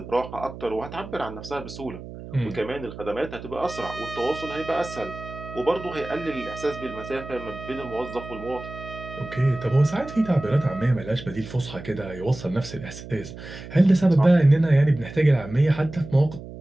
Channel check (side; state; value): right; noise; hum, 13 dB below the sound